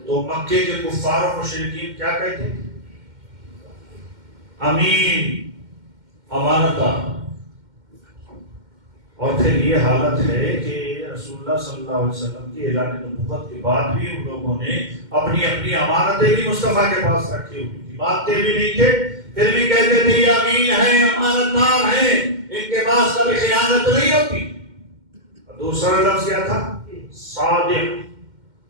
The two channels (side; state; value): left; late; 2.1 ms